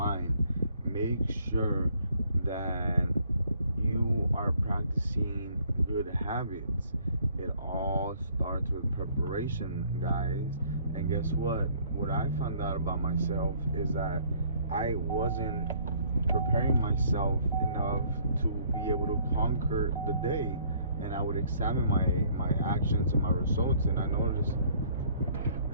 Make sure that you are practicing good habits. It all starts with preparation, guys. And guess what? What I found out about myself is that I wasn't preparing myself enough to be able to conquer the day. And I would examine my actions and my results, and I noticed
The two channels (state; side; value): inverted; both; correlation -0.61